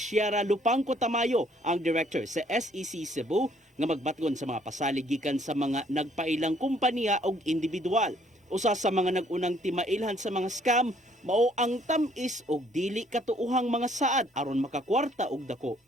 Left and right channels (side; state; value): both; normal; correlation 0.64